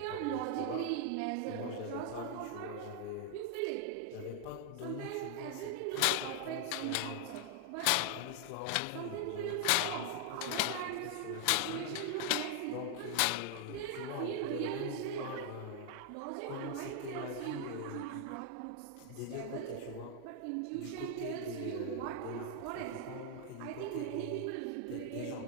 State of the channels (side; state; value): both; different; correlation 0.00